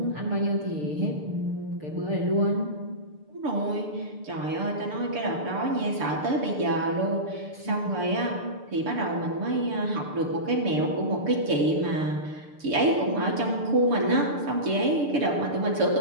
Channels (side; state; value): left; late; 6.7 ms